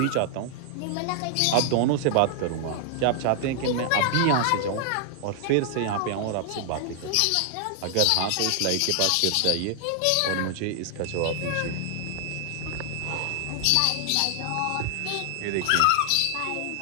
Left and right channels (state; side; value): different; both; correlation 0.00